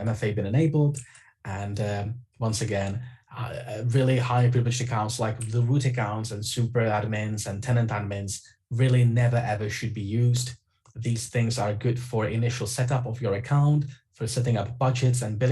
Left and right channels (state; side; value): identical; both; correlation 1.00